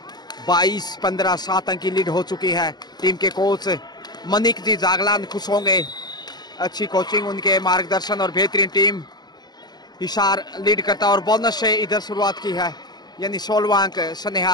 22-15 7 अंक की लीड हो चुकी है। टीम के कोच मनिक जी जागलान खुश होंगे। अच्छी कोचिंग, उनके मार्गदर्शन और बेहतरीन टीम। हिसार लीड करता और बोनस से इधर शुरुआत की है, यानी 16वां अंक स्नेहा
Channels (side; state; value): right; late; 0.20 ms